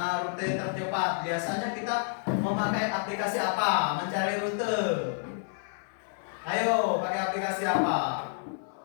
rute tercepat biasanya kita memakai aplikasi apa? Mencari rute. Ayo, pakai aplikasi apa?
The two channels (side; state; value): right; silent; 58 dB below the other